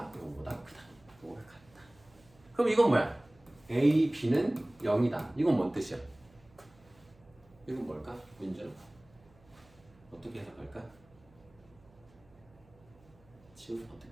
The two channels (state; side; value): noise; right; hum, 28 dB below the sound